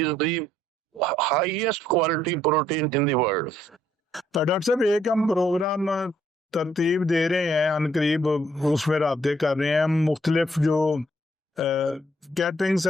the highest quality protein in the world. Doctor صاحب, ایک ہم پروگرام ترتیب دے رہے ہیں ان قریب, اس میں رابطے کر رہے ہیں. ہم مختلف جو کیٹرنگ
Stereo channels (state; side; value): normal; both; correlation 0.69